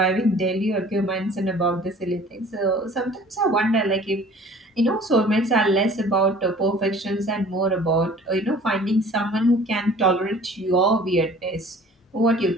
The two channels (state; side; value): normal; both; correlation 0.49